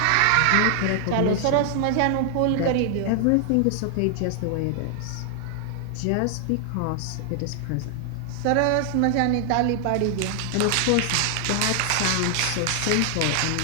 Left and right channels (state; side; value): different; both; correlation 0.00